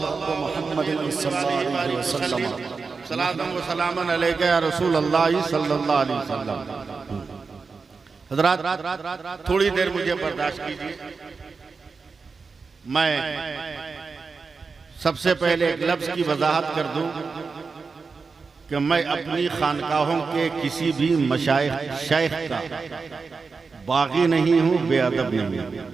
सलातुन व सलामुन अलैका या रसूल अल्लाह सल्लल्लाहु अलैहि वसल्लम। हज़रात, थोड़ी देर मुझे बर्दाश्त कीजिए। मैं सबसे पहले एक लफ्ज की वजाहत कर दूं कि मैं अपनी खानकाहों के किसी भी मशाइख शेख का बागी नहीं हूं, बेअदब नहीं हूं।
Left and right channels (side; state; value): left; quieter; 4.7 dB